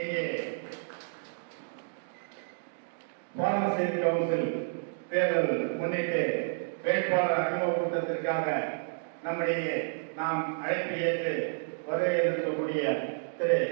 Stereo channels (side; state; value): left; silent; digital silence